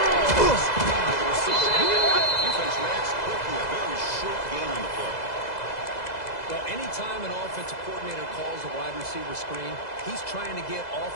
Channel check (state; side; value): late; right; 2.0 ms